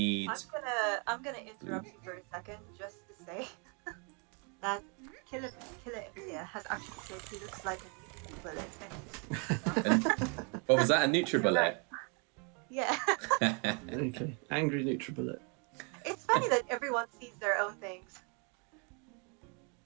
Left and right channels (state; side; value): quieter; left; 35.6 dB